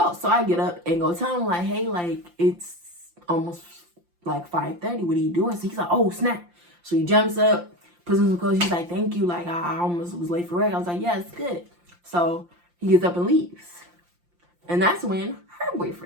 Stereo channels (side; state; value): left; late; 5.7 ms